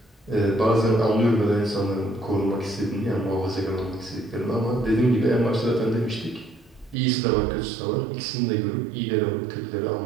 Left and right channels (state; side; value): drops out; left; at 7.0 s